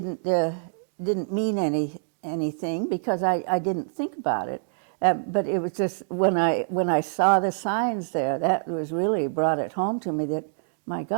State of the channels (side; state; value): left; silent; digital silence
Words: didn't mean anything because I didn't think about it. But it was just when I saw the signs there, that was really brought it home to me that, my